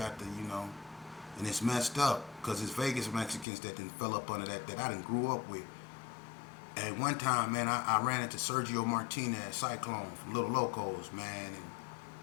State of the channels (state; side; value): drops out; right; at 3.5 s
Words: to, you know, and it's messed up, because it's Vegas Mexicans that done fell up under that I done grew up with. And one time, man, I ran into Sergio Martinez, Cyclone, from Little Locos, man, and